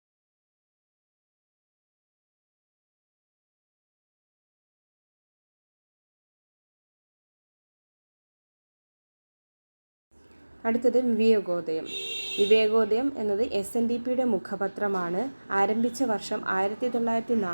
അടുത്തത് വിവേകോദയം. വിവേകോദയം എന്നത് SNDPയുടെ മുഖപത്രമാണ്. ആരംഭിച്ച വർഷം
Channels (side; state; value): both; inverted; correlation -1.00